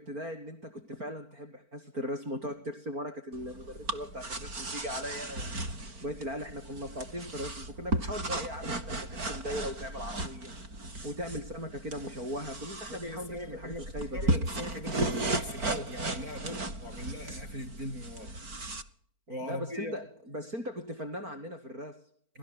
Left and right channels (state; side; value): late; left; 4.4 ms